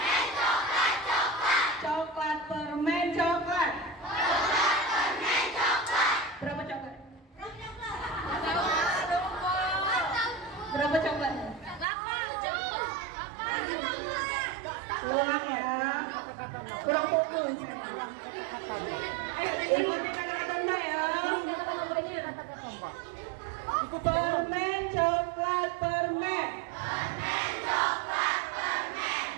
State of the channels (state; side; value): drops out; left; at 11.9 s